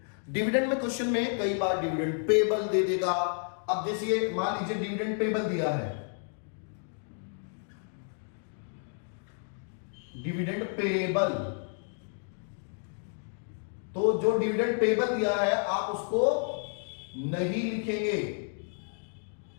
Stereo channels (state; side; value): silent; right; 57 dB below the other